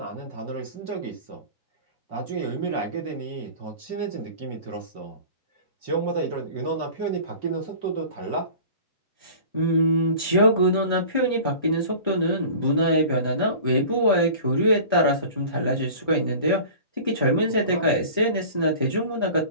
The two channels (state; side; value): inverted; both; correlation -0.40